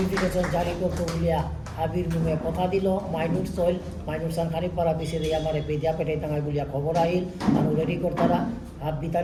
জারি করতে বলিয়া হাবির মুখে কথা দিল মাইনুর সইল মাইনুর সান খানিকপাড়া পিছিয়ে দিয়ে আমার পেদিয়া পেটে টাঙাই বলিয়া খবর আহিল মানুষ রেডি করতারা হাত বিতা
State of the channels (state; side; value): identical; both; correlation 1.00